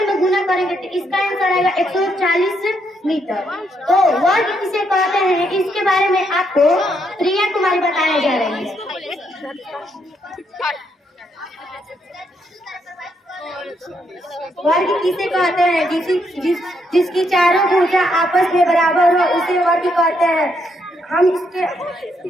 में गुना करेंगे तो इसका आंसर आएगा 140 मीटर। तो वर्ग किसे कहते हैं इसके बारे में आपको प्रिया कुमारी बताने जा रही है। वर्ग किसे कहते हैं। जिसकी चारों भुजा आपस में बराबर हो उसे वर्ग कहते हैं। हम इसमें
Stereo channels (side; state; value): both; normal; correlation 0.76